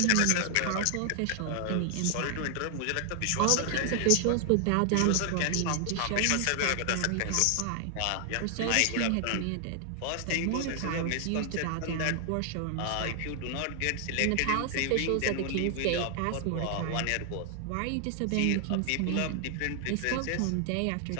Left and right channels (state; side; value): different; both; correlation 0.00